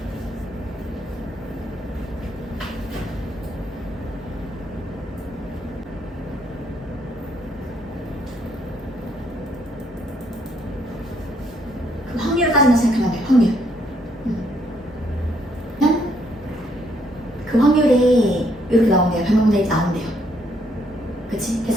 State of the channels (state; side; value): normal; both; correlation 0.70